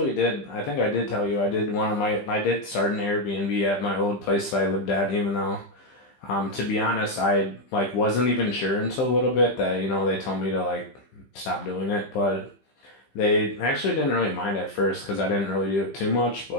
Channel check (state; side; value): late; right; 15 ms